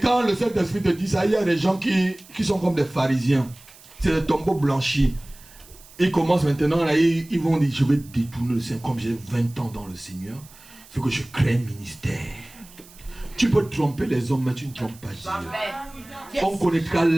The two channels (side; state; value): right; noise; hiss, 23 dB below the sound